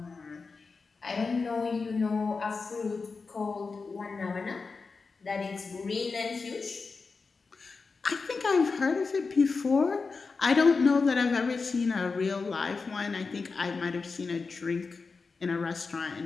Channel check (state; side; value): quieter; right; 4.5 dB